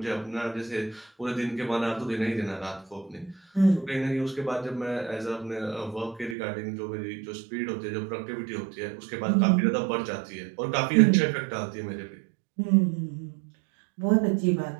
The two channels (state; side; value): drops out; left; at 6.4 s